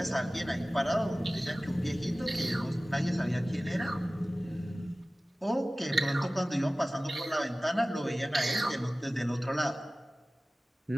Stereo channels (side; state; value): both; normal; correlation 0.97